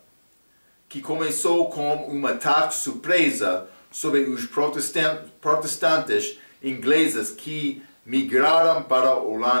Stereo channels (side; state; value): both; inverted; correlation -1.00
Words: que começou com um ataque surpresa sobre os protestantes ingleses que migraram para a